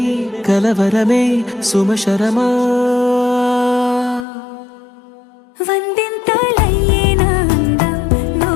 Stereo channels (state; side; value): drops out; right; at 4.2 s